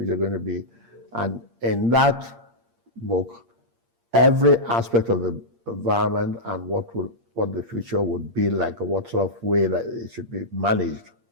going to be? And in that book, every aspect of the environment and what the future would be like, or what sort of way that it should be managed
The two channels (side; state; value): left; late; 8.6 ms